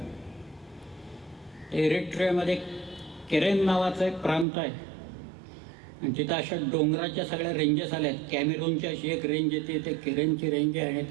एरिट्रियामध्ये केरेन नावाचा एक प्रांत आहे आणि तिथं अशा डोंगराच्या सगळ्या रेंजेस आल्यात. कॅमेरूनची अशी एक रेंज येते, ते केरेनची रेंज आहे आणि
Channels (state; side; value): drops out; left; at 4.5 s